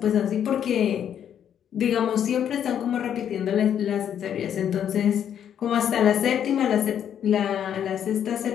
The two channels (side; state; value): right; quieter; 9.3 dB